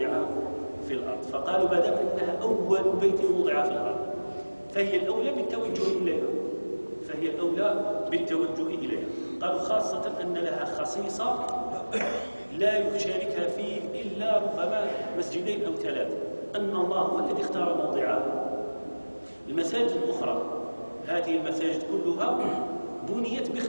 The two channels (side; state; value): both; inverted; correlation -1.00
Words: في الأرض. فقالوا: ما دام أنها أول بيت وضع في الأرض فهي الأولى بالتوجه إليها. قالوا: خاصة أن لها خصيصة لا يشاركها فيه إلا ربما 2 مسجدين أو 3، أن الله هو الذي اختار موضعها. المساجد الأخرى، هذه المساجد كلها بنيت